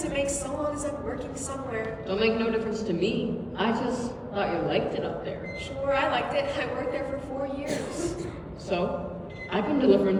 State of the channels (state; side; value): identical; both; correlation 1.00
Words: it makes so long as I'm working somewhere. Don't make no difference to me. I just thought you liked it up there. Sure, I liked it. I worked there for 4 years. So, I've been